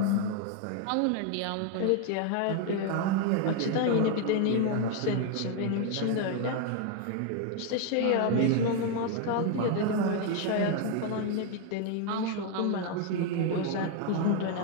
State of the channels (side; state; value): both; different; correlation 0.00